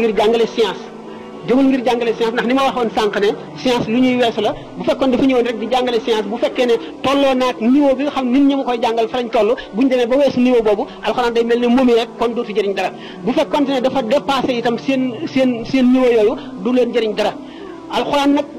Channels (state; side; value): identical; both; correlation 1.00